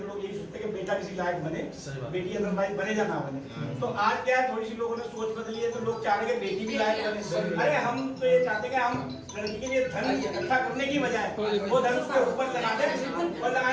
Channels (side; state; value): both; identical; correlation 1.00